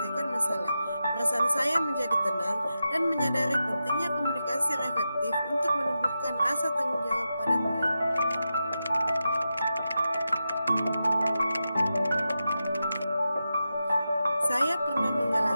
masalah. Perasaan saya menjadi tenang dan menyadari pentingnya komunikasi yang efektif untuk menumbuhkan rasa tanggung jawab pada murid. Saya pernah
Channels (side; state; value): both; inverted; correlation -0.89